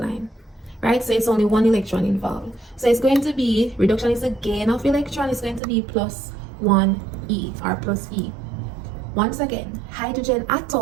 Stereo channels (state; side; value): drops out; left; at 5.6 s